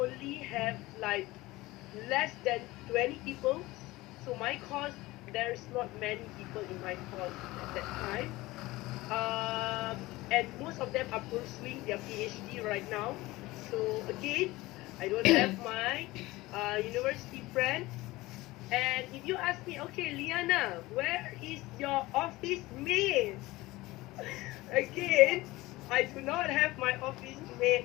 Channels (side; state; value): right; quieter; 19.6 dB